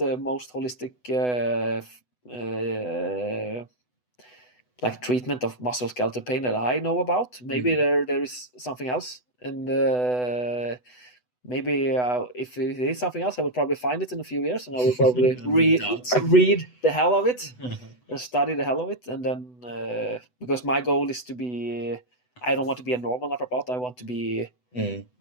most holistic like treatment of musculoskeletal pain that I know about. Maybe there is something else, and maybe if it is something else, I will probably find it in a few years, and I will probably read the hell of it and study the hell of it, and then because my goal is to be, I don't want to be a normal naprapat. I want to be,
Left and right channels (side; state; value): right; late; 8.0 ms